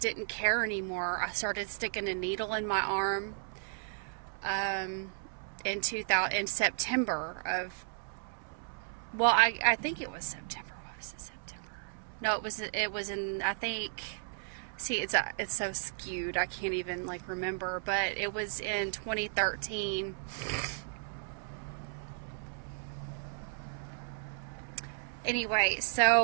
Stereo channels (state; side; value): silent; left; 55 dB below the other